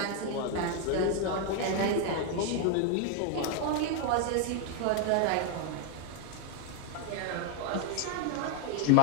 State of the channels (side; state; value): both; different; correlation 0.01